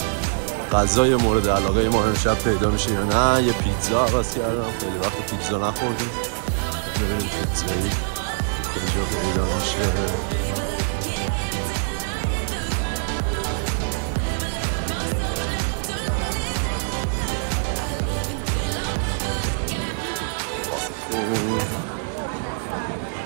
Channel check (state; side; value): silent; left; 56 dB below the other